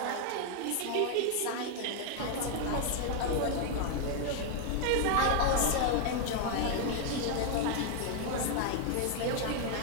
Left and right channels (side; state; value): both; different; correlation 0.00